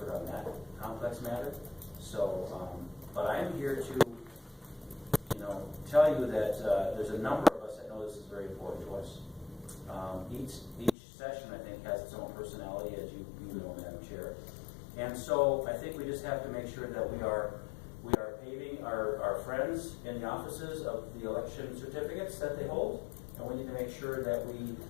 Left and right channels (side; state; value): right; drops out; at 11.0 s